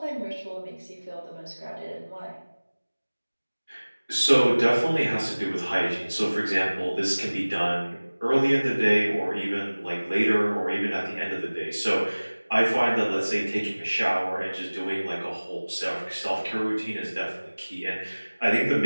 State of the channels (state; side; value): inverted; both; correlation -1.00